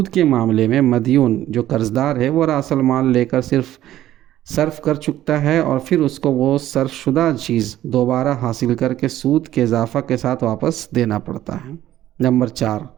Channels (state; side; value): quieter; left; 13.2 dB